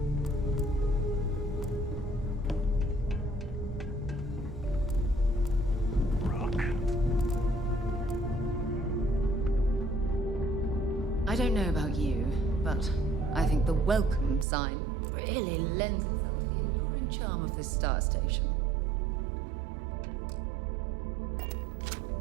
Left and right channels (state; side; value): drops out; left; at 14.5 s